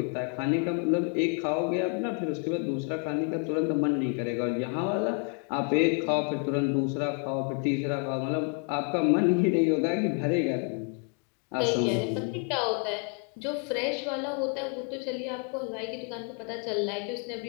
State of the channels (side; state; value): right; quieter; 36.3 dB